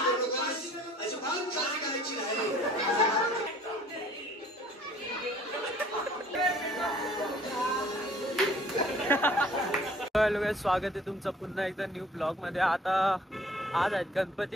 करू नकास, अजिबात काळजी करायची नाही. हॅलो, स्वागत आहे तुमचं पुन्हा एकदा न्यू ब्लॉग मध्ये. आता आज आहेत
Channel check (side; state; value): both; normal; correlation 0.54